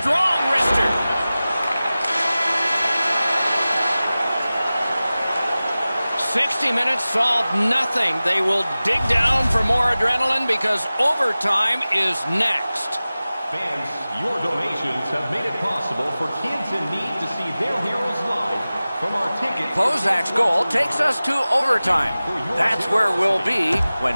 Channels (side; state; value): both; inverted; correlation -0.97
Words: wrister. 60 minutes solved nothing. They will dig down for more adrenaline because overtime is next. Fans, your donations have made it possible for kids in need to see their heroes live from our ticket. Kozak's goal takes us to overtime. That's where we'll be